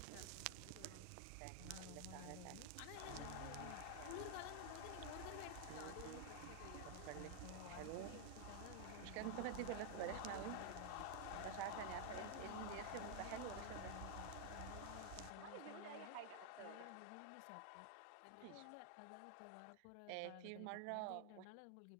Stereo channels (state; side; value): different; both; correlation 0.00